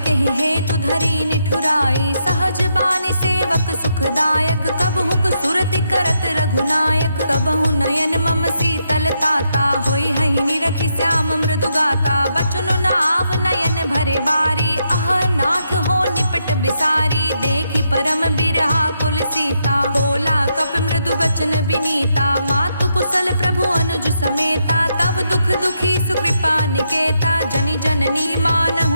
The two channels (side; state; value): both; inverted; correlation -0.80